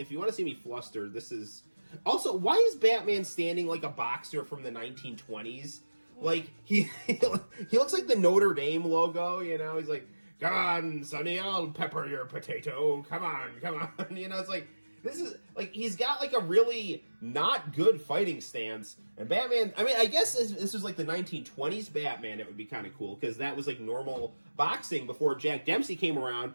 you want to see me flustered, this is... Also, why is Batman standing like a boxer from the 1920s? Like, he looks like the Notre Dame logo, you know? He's like, come on, Sonny, I'll pepper your potato. Come on, come on. You know, it's like, this is, like, he's got, like, a really not good fighting stance. And Batman, I mean, I guess this was, like, the 1920s Batman, it would be kind of cool, because that was, like, normal boxing before Jack Dempsey came around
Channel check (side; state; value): both; inverted; correlation -1.00